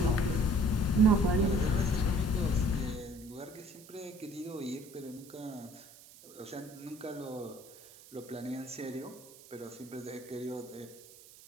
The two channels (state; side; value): noise; right; hiss, 20 dB below the sound